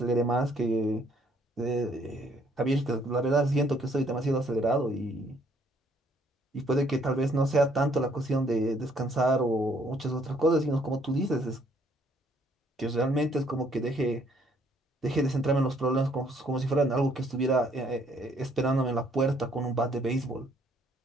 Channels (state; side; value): normal; both; correlation 0.65